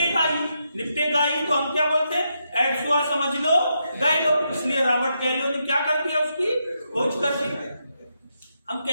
ही, निपटेगा ही, तो हम क्या बोलते हैं, एड्स हुआ, समझ लो, गए लो। इसलिए रॉबर्ट गैलो ने क्या कर दिया, उसकी खोज कर दी। हम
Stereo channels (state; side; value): inverted; both; correlation -0.82